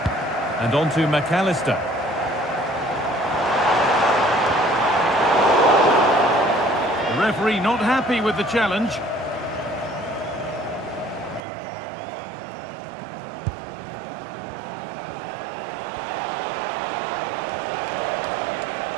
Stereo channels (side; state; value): left; drops out; at 11.4 s